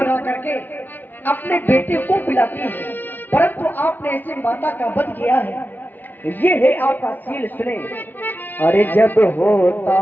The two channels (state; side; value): late; right; 0.087 ms